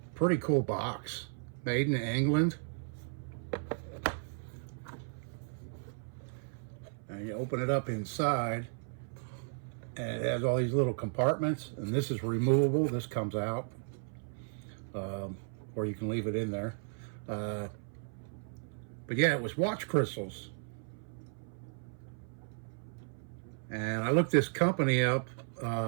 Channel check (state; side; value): silent; left; 55 dB below the other